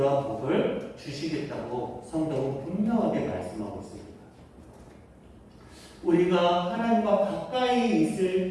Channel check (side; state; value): both; identical; correlation 1.00